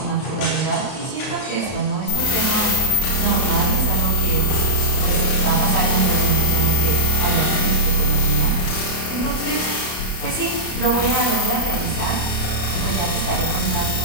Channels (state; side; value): late; right; 32 ms